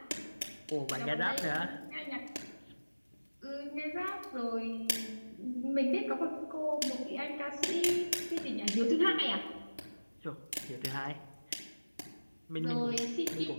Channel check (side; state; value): both; inverted; correlation -1.00